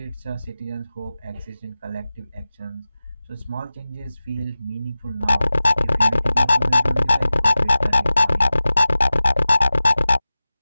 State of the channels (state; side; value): inverted; both; correlation -0.95